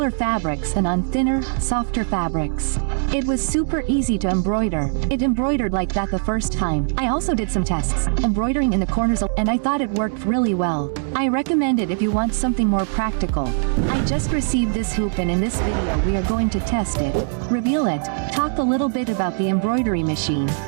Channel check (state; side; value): silent; left; digital silence